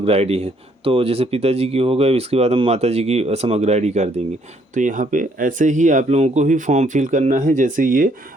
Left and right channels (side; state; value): both; normal; correlation 0.67